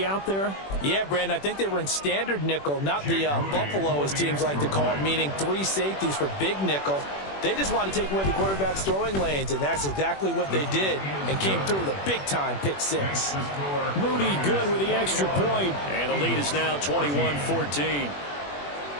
out there? Yeah, Brandon, I think they were in standard nickel, not the Buffalo, as teams like to call it, meaning 3 safeties for big nickel. They just wanted to take away the quarterback's throwing lanes, and that's exactly what they did and came through with a big-time pick 6. Moody good with the extra point. And the lead is now 21-14.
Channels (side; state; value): right; late; 21 ms